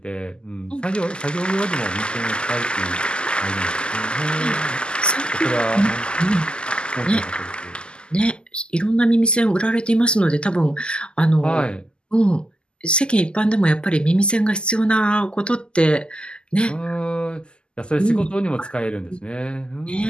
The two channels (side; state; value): right; late; 0.049 ms